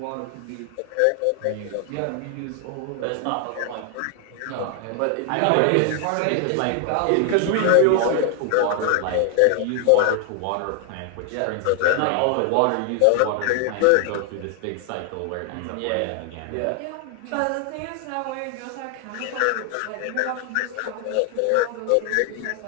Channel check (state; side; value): different; both; correlation 0.00